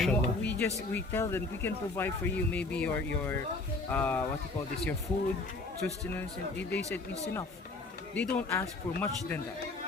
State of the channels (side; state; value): right; quieter; 3.3 dB